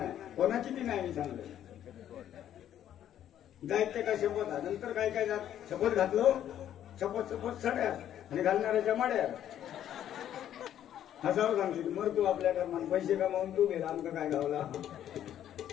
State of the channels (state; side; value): quieter; right; 10.9 dB